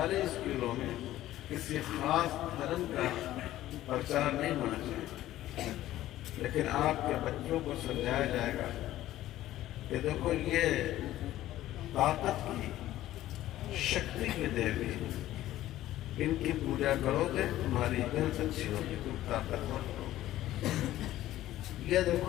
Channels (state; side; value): quieter; right; 14.4 dB